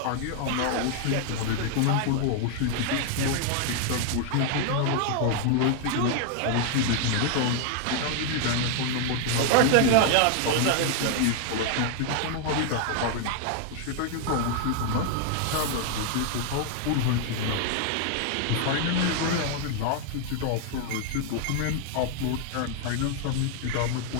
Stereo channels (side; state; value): both; different; correlation 0.00